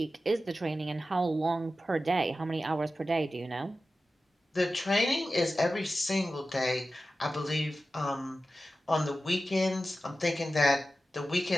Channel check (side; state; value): both; normal; correlation 0.94